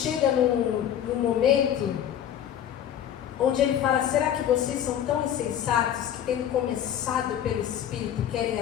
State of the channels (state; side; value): quieter; right; 10.1 dB